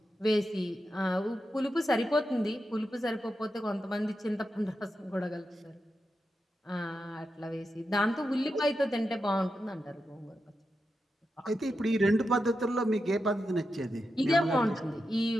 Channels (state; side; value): normal; both; correlation 0.88